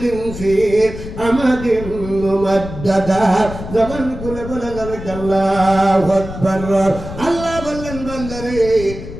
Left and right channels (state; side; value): noise; left; rumble, 10 dB below the sound